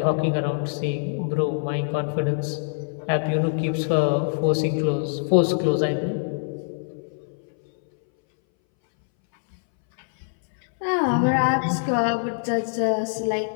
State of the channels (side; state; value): right; silent; 61 dB below the other